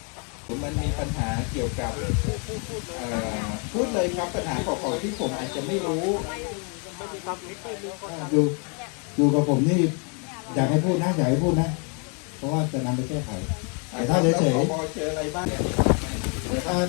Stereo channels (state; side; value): quieter; right; 37.2 dB